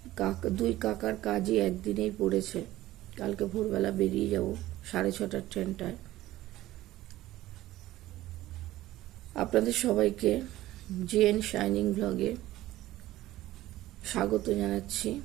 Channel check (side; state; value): left; quieter; 15.7 dB